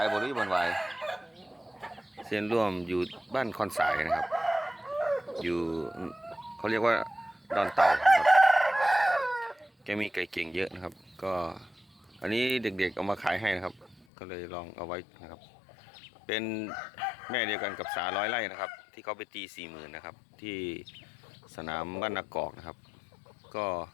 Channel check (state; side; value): drops out; right; at 14.1 s